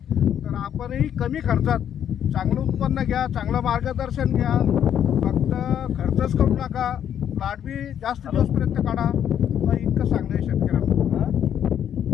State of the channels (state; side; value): quieter; right; 9.6 dB